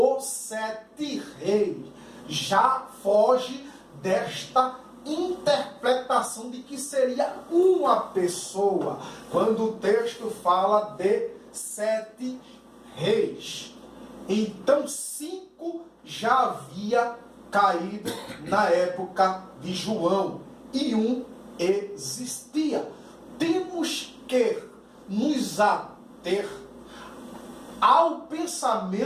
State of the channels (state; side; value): identical; both; correlation 1.00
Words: 7 reis. Já foge desta interpretação de que seria uma pessoa, quando o texto fala de 7 reis. Então 5 já havia caído na época de João e um existia. Temos que nos ater ao